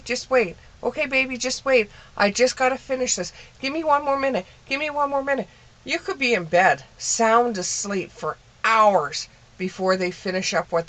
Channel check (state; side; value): identical; both; correlation 1.00